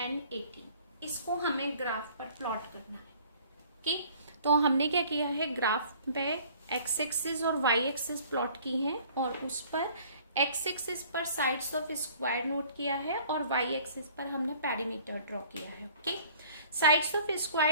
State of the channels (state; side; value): inverted; both; correlation -0.54